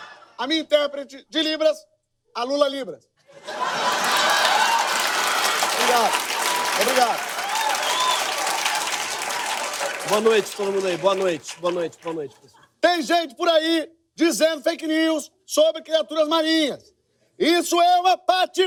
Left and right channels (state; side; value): identical; both; correlation 1.00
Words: a minha intérprete de Libras, a Lula Libras. Obrigado. Boa noite, todo mundo aí. Boa noite, pessoal. Tem gente por aí dizendo fake news sobre criaturas marinhas. Isso é uma